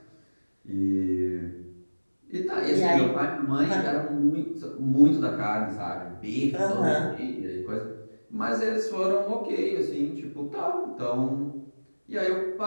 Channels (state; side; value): inverted; both; correlation -1.00